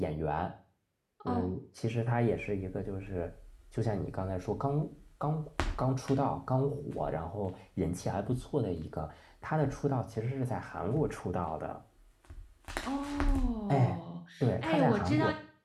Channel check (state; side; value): identical; both; correlation 1.00